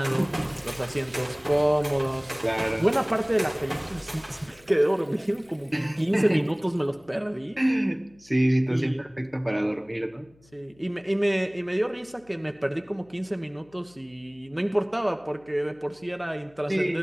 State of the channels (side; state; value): left; noise; hum, 29 dB below the sound